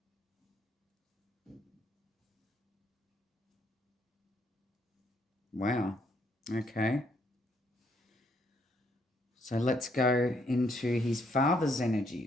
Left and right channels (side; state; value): both; normal; correlation 0.71